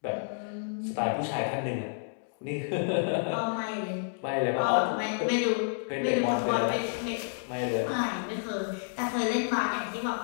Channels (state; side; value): silent; right; digital silence